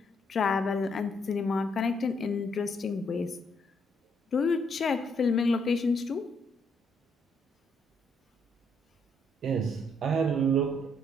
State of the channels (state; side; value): normal; both; correlation 0.72